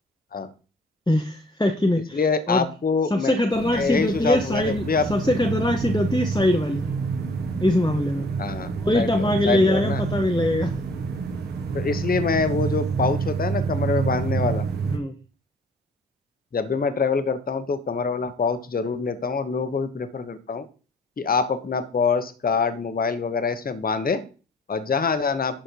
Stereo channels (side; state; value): both; normal; correlation 0.55